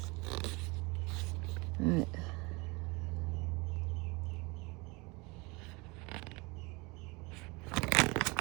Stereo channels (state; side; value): quieter; left; 26.4 dB